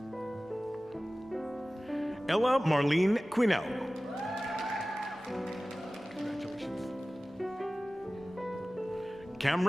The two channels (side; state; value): both; normal; correlation 0.97